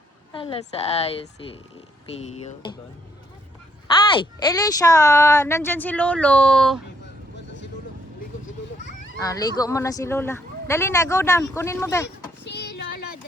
Hala sa ayos si Pio. Ay! Elisha! Nandyan si Lolo. Ligo mo na si Lola. Dali na, go down. Kunin mo ba? Si Lola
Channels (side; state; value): both; normal; correlation 0.72